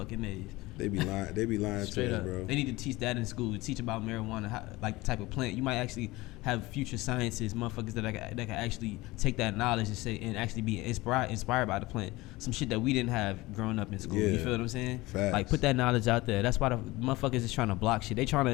A's. They be lying straight up, bro. They need to teach that in school. Teach about marijuana, like the type of plant. You might actually have future scientists, motherfuckers that can actually take that knowledge and actually be inspired by the plant. Some shit that we didn't have growing up in school. Yeah. You feel what I'm saying? Facts. Like put that knowledge out there. That's why the motherfuckers is trying to block shit. They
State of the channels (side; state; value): right; quieter; 20.4 dB